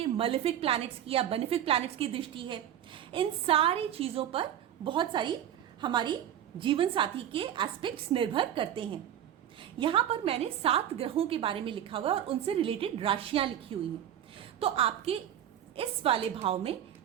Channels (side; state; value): left; quieter; 10.7 dB